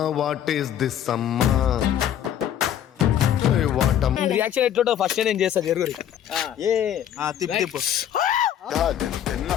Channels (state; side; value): quieter; right; 10.2 dB